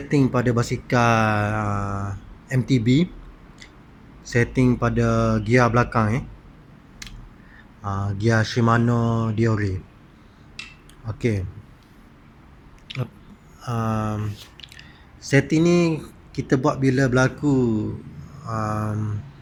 pada basikal MTB, setting pada gear belakang gear Shimano Diore. Okey. Setting ni kita buat bila berlaku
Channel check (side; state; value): both; identical; correlation 1.00